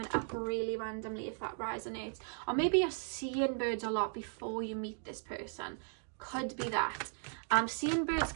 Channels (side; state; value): left; silent; 53 dB below the other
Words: up really randomly, if that resonates. Or maybe you're seeing birds a lot before you meet this person. Could be that. Seeing birds